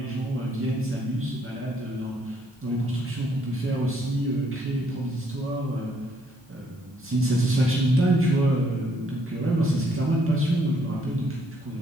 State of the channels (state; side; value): normal; both; correlation 0.69